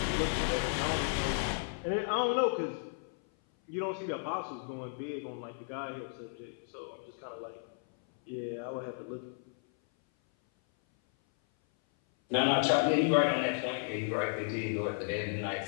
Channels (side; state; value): right; silent; 55 dB below the other